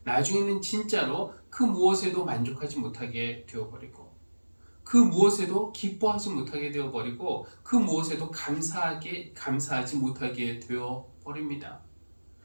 나중에는 진짜로 그 무엇에도 만족하지 못하게 되어버리고, 그 무엇에도 기뻐하지 못하게 되어버리고, 그 무엇에도 감사하지 못하게 되어버립니다.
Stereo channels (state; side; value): inverted; both; correlation -1.00